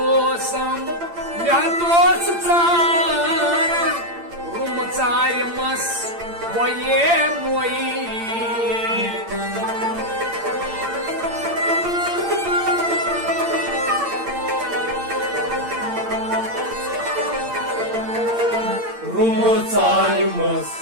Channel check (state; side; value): late; left; 8.8 ms